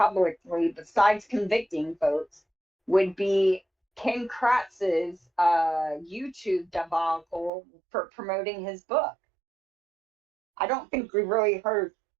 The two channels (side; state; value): left; drops out; at 7.5 s